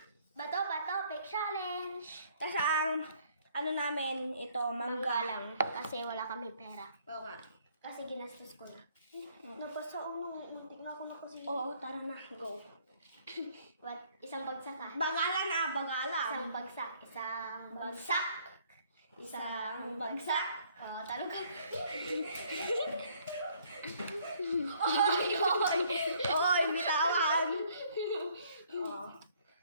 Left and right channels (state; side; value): inverted; both; correlation -0.63